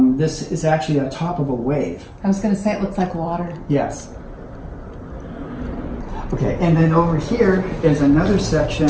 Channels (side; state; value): both; identical; correlation 1.00